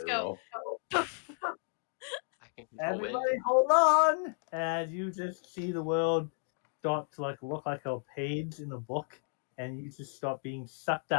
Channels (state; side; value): silent; right; 56 dB below the other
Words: go fireball. poof. I can control wind. Everybody hold on! As you just see the world start to like look like a page in a book, and you just start being sucked